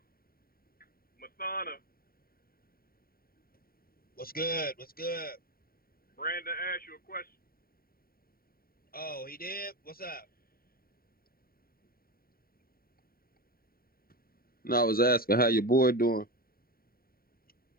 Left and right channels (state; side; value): late; right; 0.43 ms